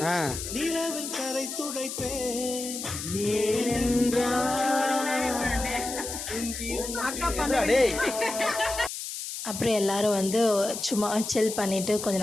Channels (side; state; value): left; noise; hiss, 7 dB below the sound